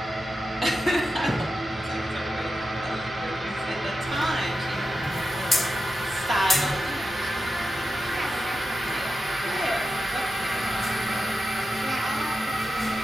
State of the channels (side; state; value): right; noise; hum, 22 dB below the sound